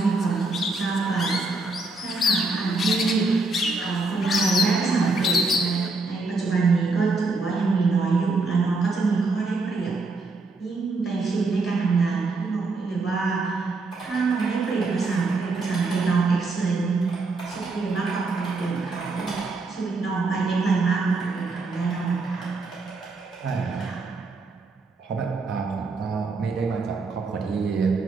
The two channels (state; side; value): quieter; left; 3.4 dB